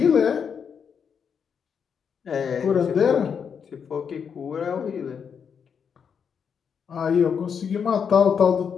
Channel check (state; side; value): quieter; right; 6.9 dB